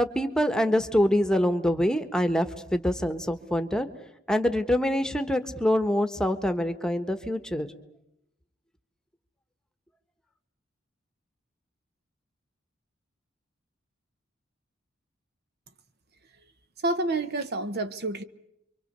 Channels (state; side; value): normal; both; correlation 0.82